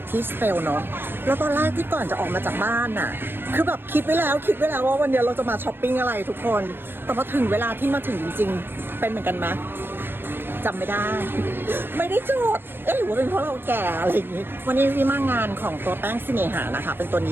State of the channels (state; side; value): late; left; 0.10 ms